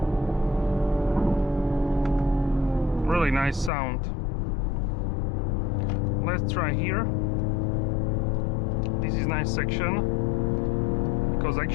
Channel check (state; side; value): drops out; right; at 3.7 s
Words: Really nice sound. Let's try here. This is nice section because